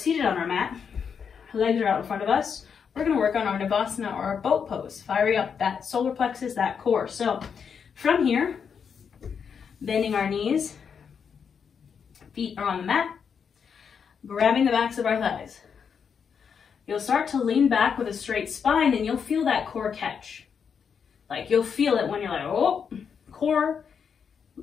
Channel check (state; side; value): quieter; right; 6.8 dB